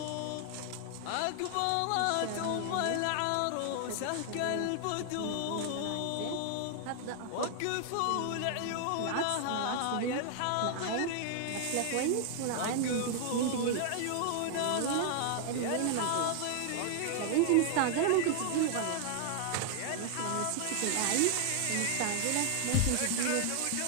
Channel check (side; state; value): both; different; correlation 0.00